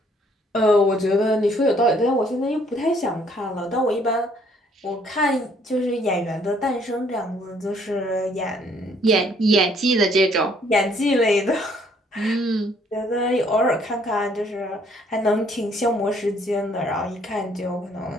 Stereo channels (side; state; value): both; normal; correlation 0.64